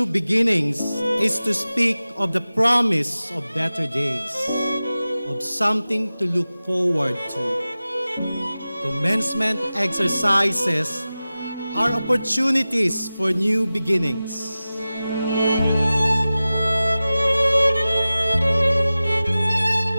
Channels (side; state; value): both; inverted; correlation -0.96